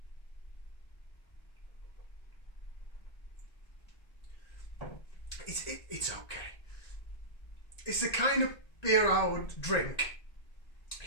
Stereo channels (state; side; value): late; right; 1.9 ms